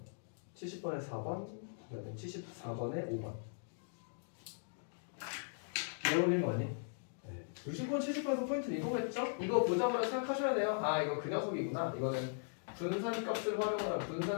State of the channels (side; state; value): right; silent; digital silence